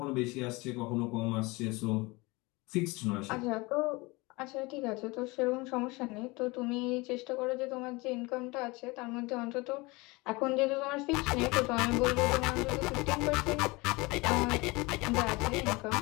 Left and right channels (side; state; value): right; quieter; 24.3 dB